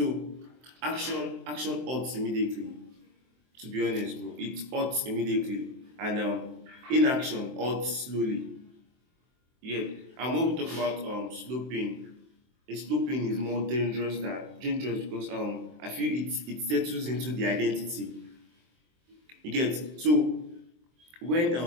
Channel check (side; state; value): left; late; 23 ms